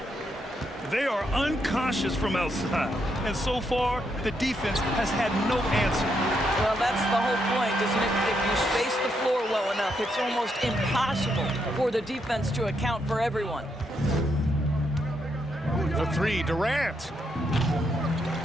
They are unconscious from outside. And so far, the defense has had no answer. Well, that's the whole point, isn't it? If you space the floor well enough, it's almost impossible for the defense to account for everyone. The three, Durant.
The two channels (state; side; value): normal; both; correlation 0.78